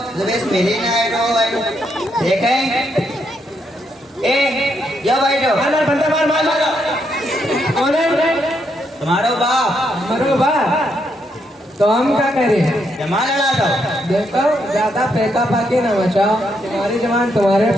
सुबह मिली नहीं रो देखें जब बैठो बंदा मार मार मार कौन है? तुम्हारो बाप हमारो बा तो हम क्या करें? जमा लड़ा दो। देखो ज्यादा पैका पाके ना बचाओ। तुम्हारी जमान तुम्हारे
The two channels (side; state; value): both; normal; correlation 0.78